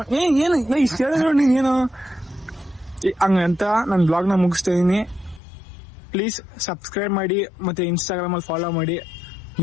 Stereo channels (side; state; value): right; drops out; at 5.4 s